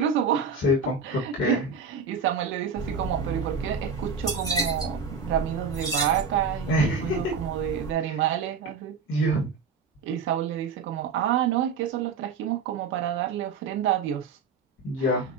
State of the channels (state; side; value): quieter; left; 5.0 dB